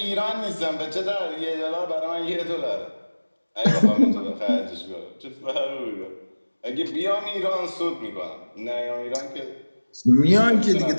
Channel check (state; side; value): inverted; both; correlation -1.00